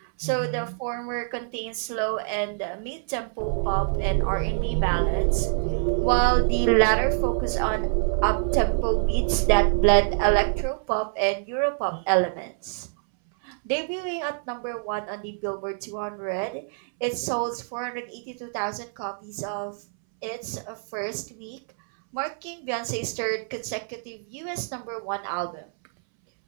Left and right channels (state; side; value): silent; left; 61 dB below the other